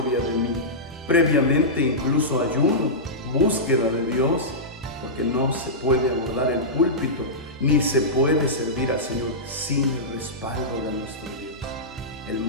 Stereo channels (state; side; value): normal; both; correlation -0.14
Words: de mí. Previamente incluso ayuno, búsqueda de Dios, porque no se puede abordar el púlpito, ni se puede servir al Señor sin el respaldo de nuestro Dios. El